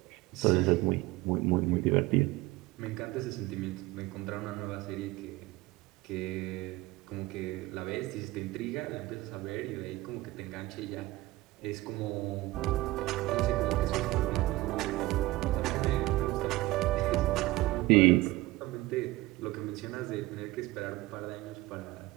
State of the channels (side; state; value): left; quieter; 19.3 dB